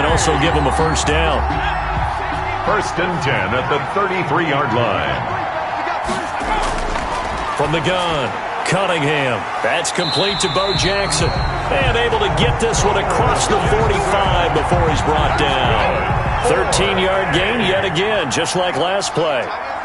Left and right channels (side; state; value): both; identical; correlation 1.00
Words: also give him a first down. 1st and 10 at the 33-yard line. From the gun, Cunningham. That's complete to Bo Jackson. And able to get this one across the 45 before he's brought down. 13-yard gain yet again, just like last play.